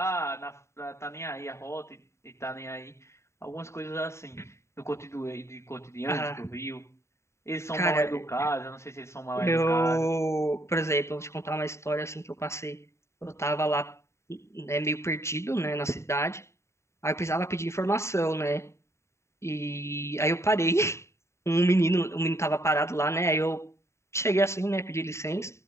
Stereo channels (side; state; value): right; late; 0.14 ms